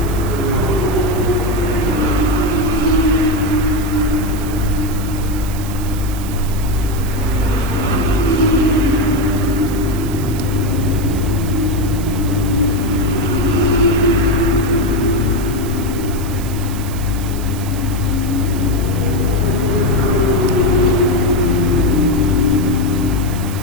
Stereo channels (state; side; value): noise; right; hiss, 14 dB below the sound